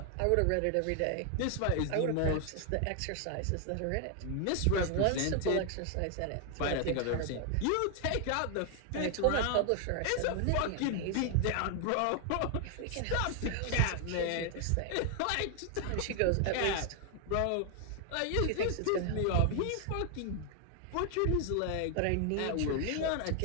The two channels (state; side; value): different; both; correlation 0.00